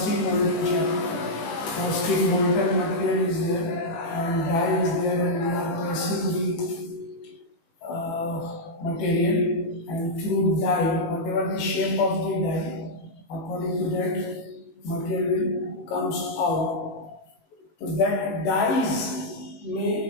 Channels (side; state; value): right; late; 18 ms